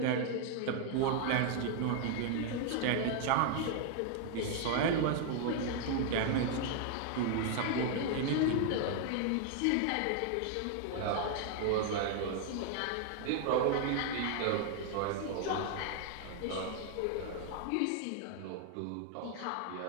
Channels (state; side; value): different; both; correlation 0.00